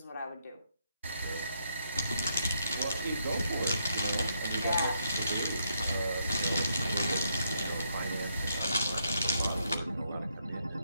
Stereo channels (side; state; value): both; inverted; correlation -0.77